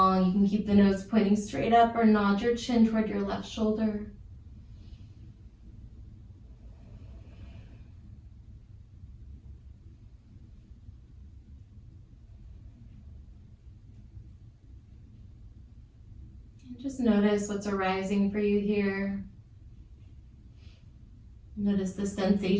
You can keep the nose pointing straight up or nod your chin toward your left shoulder. Just notice what's arising for you here. Notice the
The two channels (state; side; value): identical; both; correlation 1.00